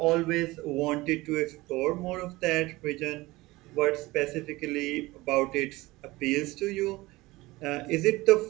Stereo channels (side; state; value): left; quieter; 20.3 dB